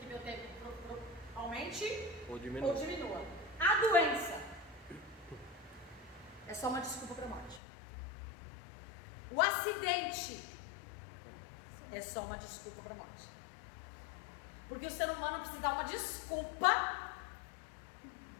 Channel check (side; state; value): right; drops out; at 7.6 s